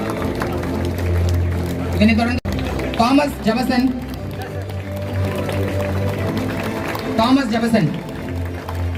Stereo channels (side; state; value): both; identical; correlation 1.00